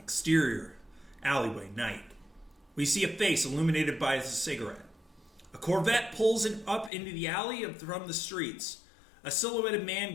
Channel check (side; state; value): right; drops out; at 6.9 s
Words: alleyway, night. We see a face illuminated by a cigarette. A Corvette pulls it up into the alley from the streets. A silhouetted man